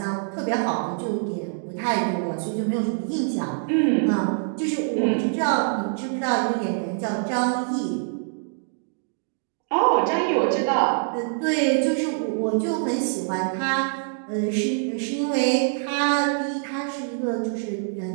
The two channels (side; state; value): left; silent; digital silence